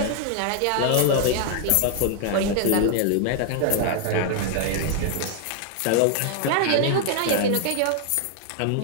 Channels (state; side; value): different; both; correlation 0.00